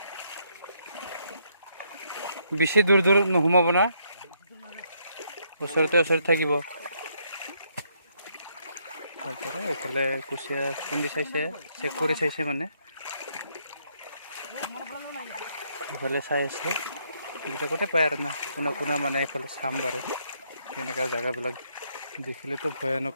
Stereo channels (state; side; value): inverted; both; correlation -0.73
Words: বেছি দূৰ দূৰ নোসোমাব না, ওচৰতে থাকিব। তাৰপৰা এইফালে কুচিয়া খুন্দি চাইছে, চেক কৰি চাইছে মানে, এইফালে চাই আছে। এইবিলাকতে পায় আৰু না, কোনা কোনা মানে এইফালে চাম বাৰু। এনেকুৱা জেগাবিলাক দেখিলেতো